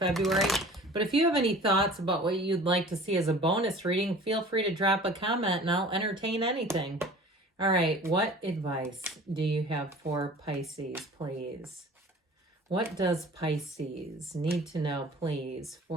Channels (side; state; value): both; normal; correlation 0.44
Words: But if you have any thoughts about what you'd like to see as a bonus reading, feel free to drop a comment and I'll entertain anything. All right, what advice do you have for Pisces, please? What does Pisces need to know, please,